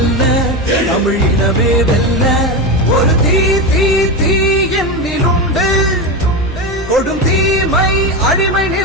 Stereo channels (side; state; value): both; normal; correlation 0.17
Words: தமிழ் இனமே வெல்ல, ஒரு தீ தீ தீ என்னிலுண்டு. கொடும் தீமை அடிமை